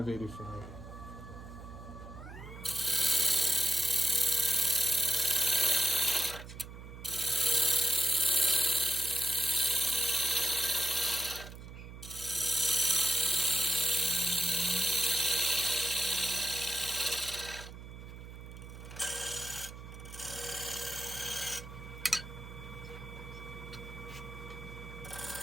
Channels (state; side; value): noise; right; hum, 13 dB below the sound